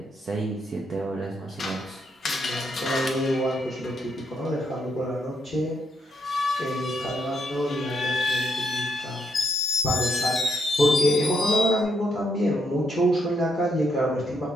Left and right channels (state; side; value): normal; both; correlation 0.77